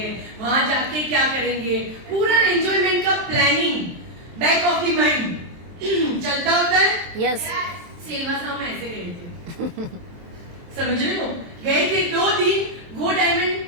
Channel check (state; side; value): late; left; 23 ms